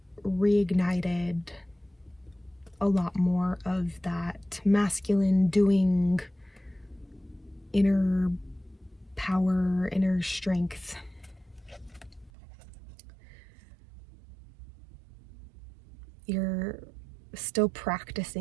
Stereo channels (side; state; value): left; drops out; at 12.3 s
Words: reignited a lot more of that masculine doing, inner power, inner strength. You're still